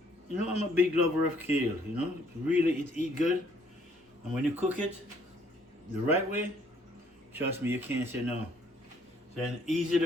I'm a big lover of kale. Really, it eat good, and when you cook it the right way, trust me, you can't say no. So it's easy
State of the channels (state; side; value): normal; both; correlation 0.64